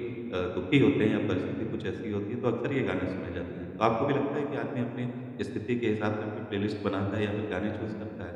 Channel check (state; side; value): identical; both; correlation 1.00